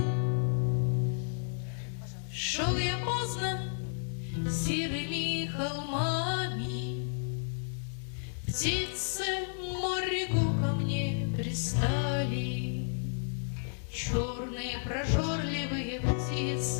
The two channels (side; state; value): right; silent; 55 dB below the other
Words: Шел я поздно серыми холмами, птицы морегу ко мне пристали, черные прожорливые